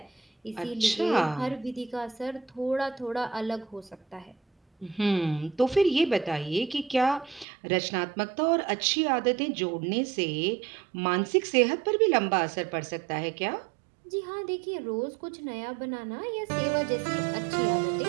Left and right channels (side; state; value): left; drops out; at 7.5 s